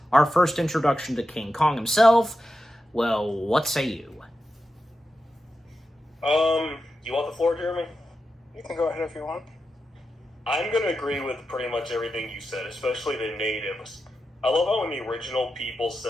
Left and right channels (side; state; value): both; normal; correlation 0.89